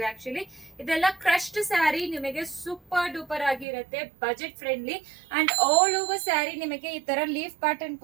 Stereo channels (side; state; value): left; drops out; at 3.7 s